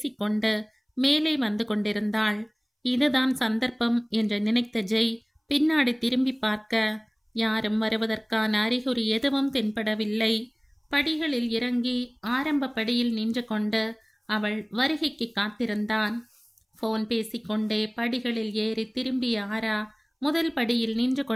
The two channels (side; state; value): both; identical; correlation 1.00